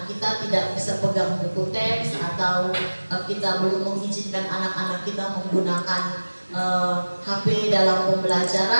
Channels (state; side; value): inverted; both; correlation -1.00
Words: kita tidak bisa pegang buku teks atau kita belum mengizinkan anak-anak kita menggunakan HP dalam